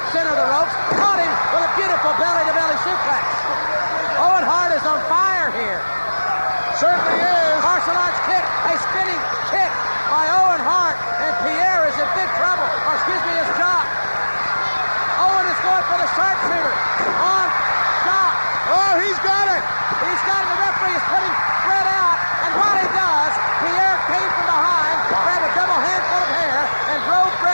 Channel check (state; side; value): inverted; both; correlation -1.00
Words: center of the ropes, caught him with a beautiful belly-to-belly suplex. Owen Hart is on fire here. Certainly is. Martial arts kick, a spinning kick by Owen Hart, and Pierre is in big trouble. Or excuse me, it's Jacques. Owen is going for the sharpshooter on Jacques. Oh, he's got it. He's got it. The referee is putting Brett out, and while he does, Pierre came from behind, grabbed a double handful of hair, and drove